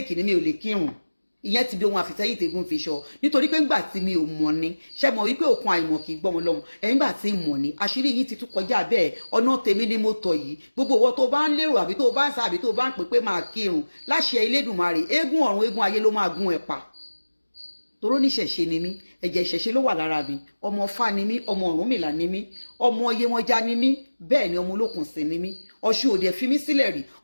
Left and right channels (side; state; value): both; inverted; correlation -1.00